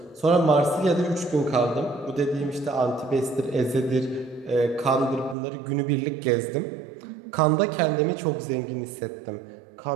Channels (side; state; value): left; drops out; at 5.4 s